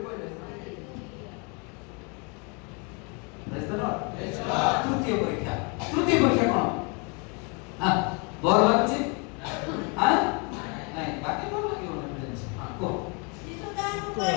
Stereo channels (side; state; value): right; quieter; 33.3 dB